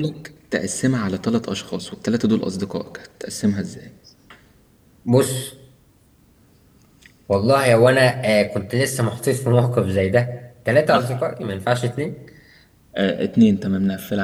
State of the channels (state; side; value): identical; both; correlation 1.00